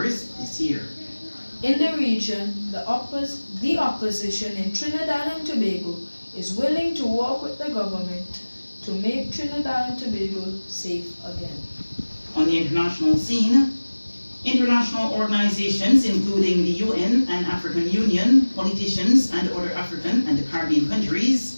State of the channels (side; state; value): both; inverted; correlation -1.00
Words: this year. In the region, the opposition in Trinidad and Tobago is willing to work with the government to make Trinidad and Tobago safe again. On the international scene, international organizations including the UN and African Union, politicians and other African and Caribbean